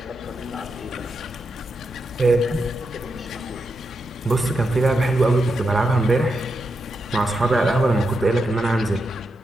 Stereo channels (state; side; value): normal; both; correlation 0.85